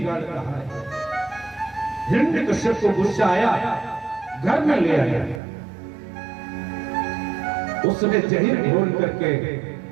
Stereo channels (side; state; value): left; drops out; at 5.4 s